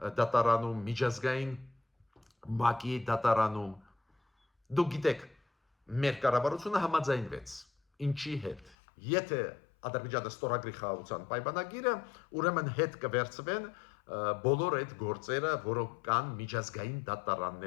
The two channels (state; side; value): drops out; right; at 8.8 s